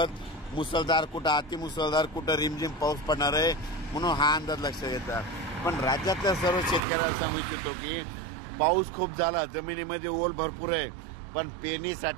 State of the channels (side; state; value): left; drops out; at 6.8 s